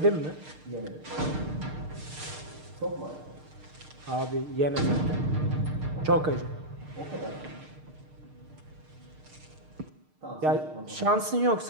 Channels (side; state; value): left; late; 6.6 ms